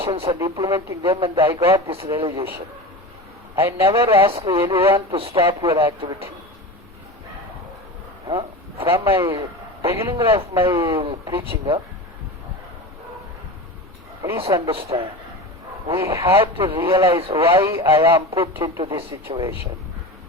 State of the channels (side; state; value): both; normal; correlation 0.29